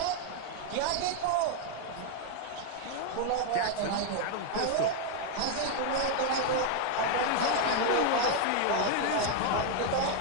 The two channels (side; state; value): both; different; correlation 0.00